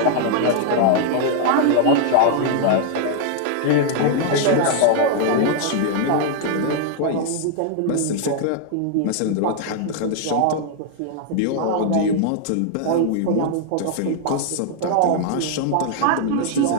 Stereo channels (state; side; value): different; both; correlation 0.00